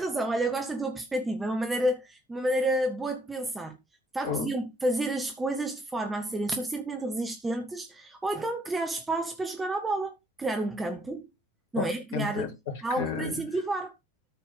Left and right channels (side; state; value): both; normal; correlation 0.68